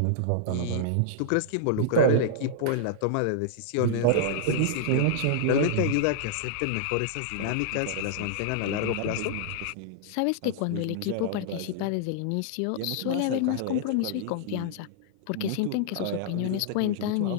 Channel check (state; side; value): different; both; correlation -0.01